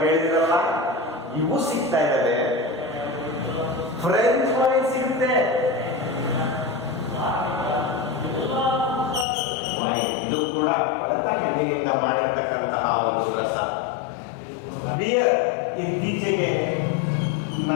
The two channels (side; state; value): right; drops out; at 9.2 s